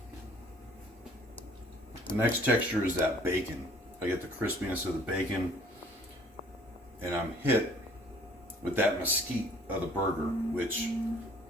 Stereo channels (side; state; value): both; normal; correlation 0.56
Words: The next texture is that bacon. I get the crispiness of the bacon, and I'm hit with that mesquite of the burger, which